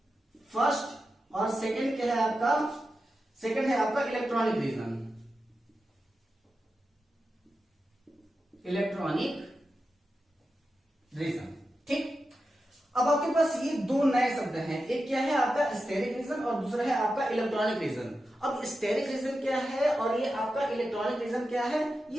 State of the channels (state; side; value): normal; both; correlation 0.91